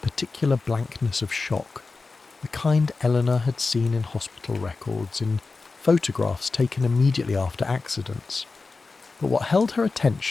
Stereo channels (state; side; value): quieter; right; 4.0 dB